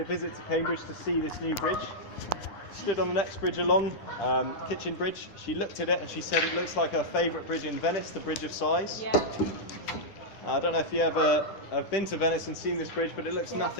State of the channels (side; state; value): right; late; 9.9 ms